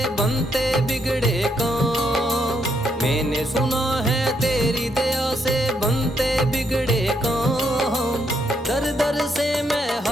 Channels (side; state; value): both; normal; correlation 0.76